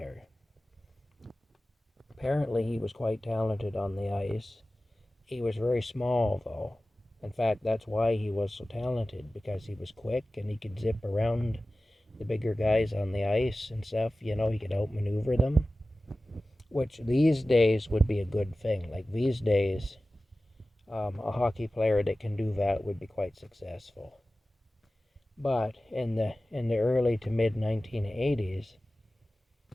Apparently, he was quite talented on the ice. He was very small, though. In fact, that's why he was so talented, because he was quick and he could zip around the bigger guys on the ice and stuff. You know, he could outmaneuver them, which these days would be a good thing. Like these days, a hockey player that can do that would be quite successful. But in the early to mid 1980s,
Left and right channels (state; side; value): normal; both; correlation 0.96